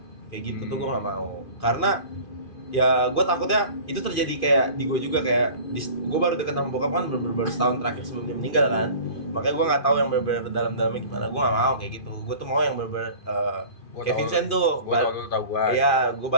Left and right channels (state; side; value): late; right; 2.5 ms